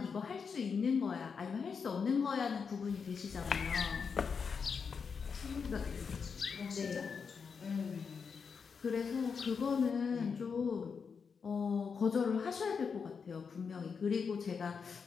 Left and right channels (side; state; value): right; quieter; 5.8 dB